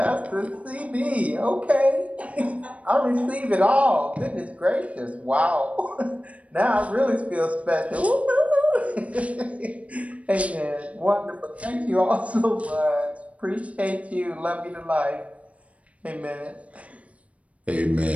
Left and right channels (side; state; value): left; late; 0.065 ms